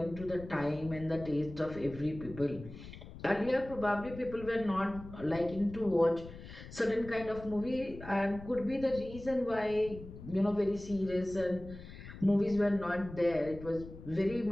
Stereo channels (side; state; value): left; noise; rumble, 14 dB below the sound